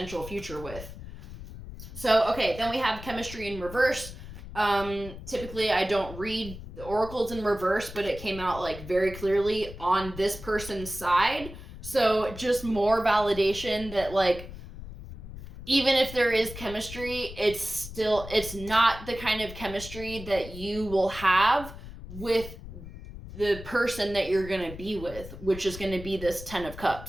future with. So, okay, then we have chemistry in reverse. Typically, I don't read the oracles in reverse, but it came out like very clearly on this person's side. So just more validation that, like, even if there is chemistry, it's not the kind of chemistry that you will have with the person that you're going to be with, which is going to be this 10 of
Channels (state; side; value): noise; left; rumble, 13 dB below the sound